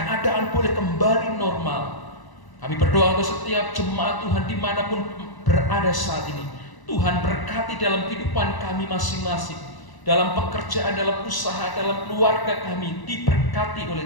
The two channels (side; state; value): right; late; 1.0 ms